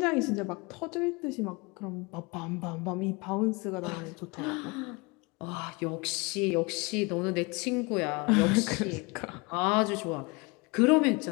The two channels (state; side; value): quieter; right; 27.1 dB